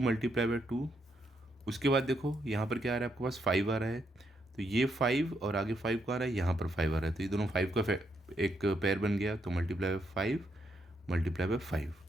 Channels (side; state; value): both; normal; correlation 0.78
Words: बाई 2। उसके बाद देखो यहाँ पर क्या आ रहा है, आपके पास 5 आ रहा है, तो ये 5 और आगे 5 का आ रहा है, यहाँ पर 5 आ रहा है, तो ये दोनों 5 का एक पेयर बन गया, तो मल्टीप्लाई बाई 5 मल्टीप्लाई बाई